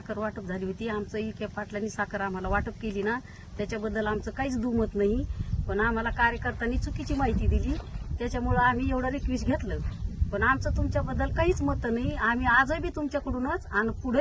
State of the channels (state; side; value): identical; both; correlation 1.00